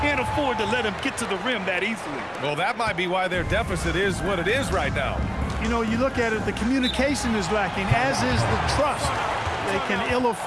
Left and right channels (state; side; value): identical; both; correlation 1.00